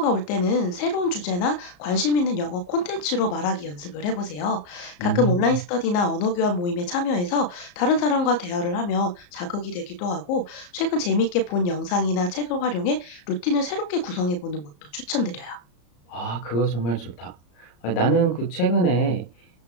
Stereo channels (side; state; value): right; late; 34 ms